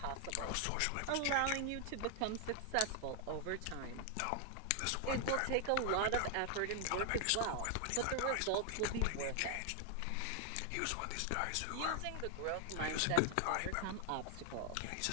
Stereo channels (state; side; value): different; both; correlation 0.00